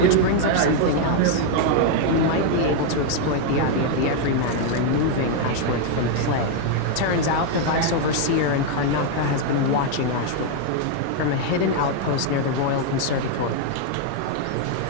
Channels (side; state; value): both; different; correlation 0.00